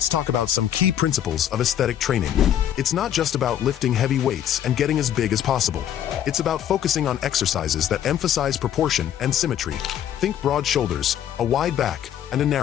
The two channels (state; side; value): quieter; right; 10.4 dB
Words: talk about some key principles of aesthetic training. It's not just about lifting heavy weights and getting as big as possible. It's about focusing on exercises that emphasize proportion and symmetry. Think broad shoulders, a wide back, and a